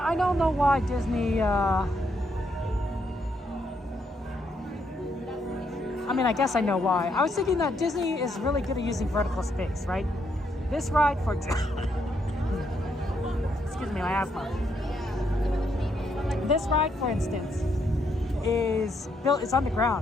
don't know why Disney, I mean, I guess I know why. I was thinking that Disney is really good at using vertical space, right? This ride, for excuse me, my asthma. This ride, for instance, is built. It's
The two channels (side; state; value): both; normal; correlation 0.75